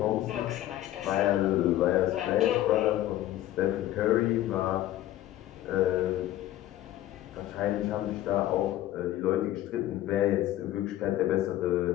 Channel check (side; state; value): right; quieter; 13.9 dB